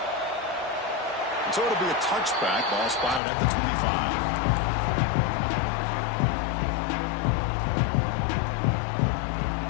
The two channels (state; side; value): drops out; right; at 3.2 s